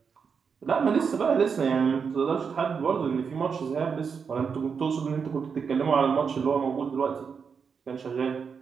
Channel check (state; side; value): quieter; left; 6.1 dB